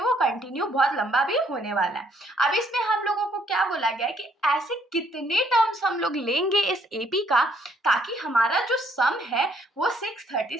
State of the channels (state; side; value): normal; both; correlation 0.67